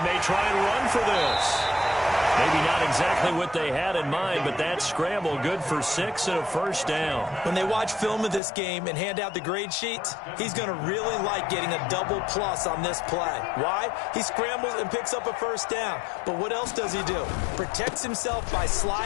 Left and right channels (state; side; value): drops out; right; at 8.4 s